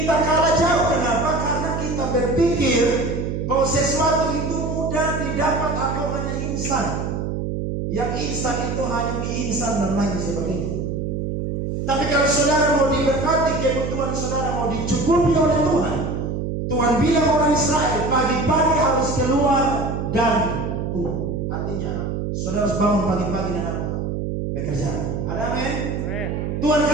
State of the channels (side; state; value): right; noise; hum, 2 dB below the sound